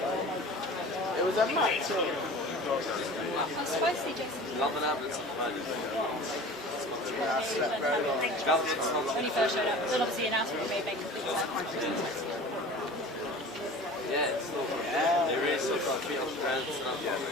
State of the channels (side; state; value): both; normal; correlation 0.39